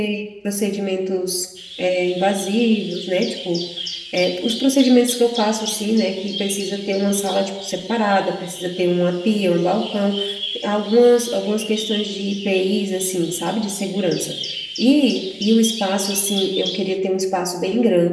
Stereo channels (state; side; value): identical; both; correlation 1.00